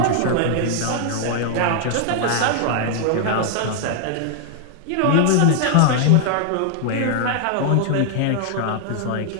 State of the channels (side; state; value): both; different; correlation 0.00